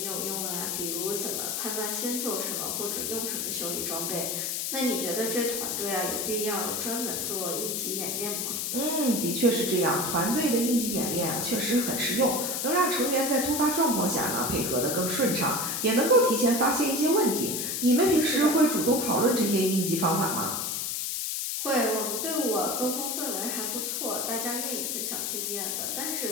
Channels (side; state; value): left; noise; hiss, 1 dB below the sound